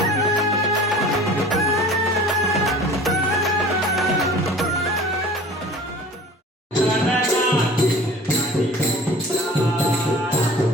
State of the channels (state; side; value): normal; both; correlation 0.43